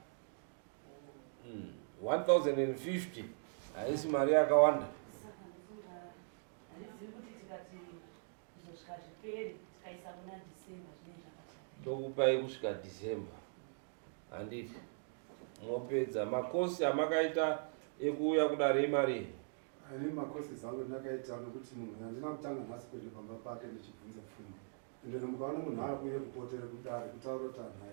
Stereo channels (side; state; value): left; silent; digital silence